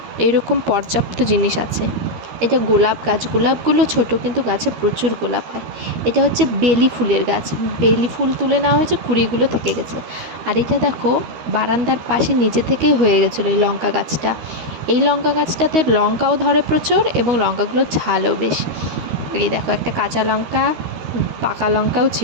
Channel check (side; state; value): left; late; 13 ms